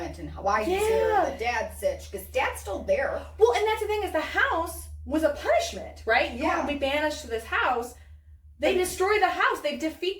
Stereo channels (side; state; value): both; identical; correlation 1.00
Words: and why he's here and the dad's sitch, because dad's still there. Well, and that's the thing, is the house was a punishment, right? You want to be banished to this house. They destroy the house. They